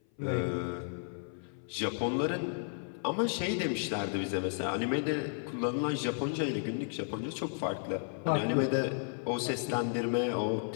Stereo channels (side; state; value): right; silent; 56 dB below the other